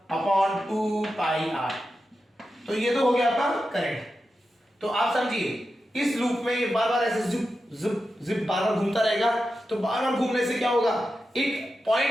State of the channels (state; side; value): normal; both; correlation 0.90